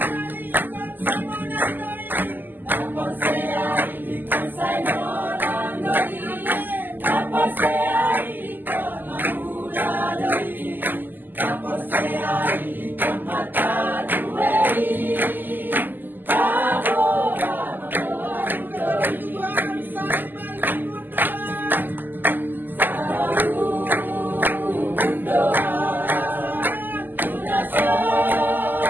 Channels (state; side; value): late; left; 0.089 ms